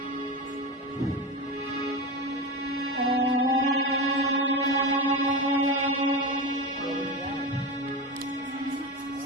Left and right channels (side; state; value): both; normal; correlation 0.21